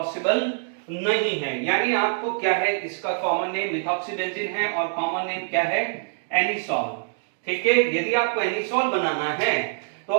नहीं है, यानी आपको क्या है, इसका कॉमन नेम मिथॉक्सीबेंजीन है और कॉमन नेम क्या है, एनिसोल, ठीक है। यदि आपको एनिसोल बनाना है तो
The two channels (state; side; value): silent; left; digital silence